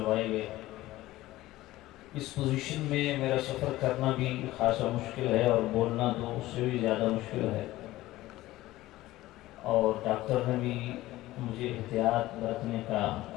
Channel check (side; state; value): right; quieter; 16.8 dB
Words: گئے۔ اس پوزیشن میں میرا سفر کرنا بھی خاصا مشکل ہے اور بولنا تو اس سے بھی زیادہ مشکل ہے، اور ڈاکٹر نے بھی مجھے احتیاط برتنے کا